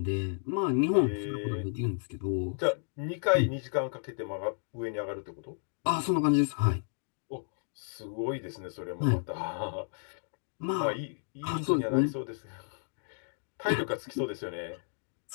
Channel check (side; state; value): right; silent; digital silence